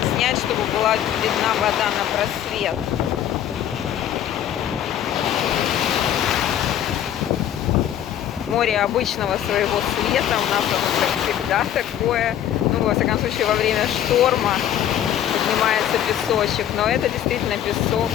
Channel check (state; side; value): quieter; right; 10.8 dB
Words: снять, чтобы была видна вода на просвет. Море обычного своего цвета, у нас оно всегда такое, ну, во всяком случае, во время шторма поднимается песочек, но это действительно песок,